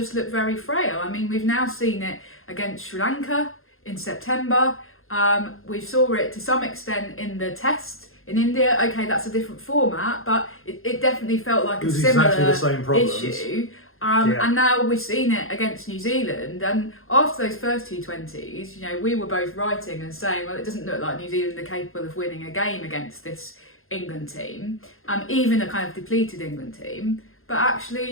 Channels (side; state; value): right; late; 0.61 ms